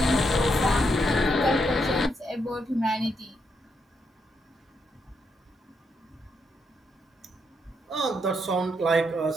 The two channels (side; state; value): both; normal; correlation 0.79